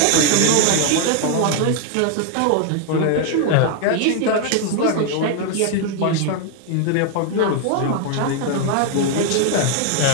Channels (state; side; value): different; both; correlation 0.00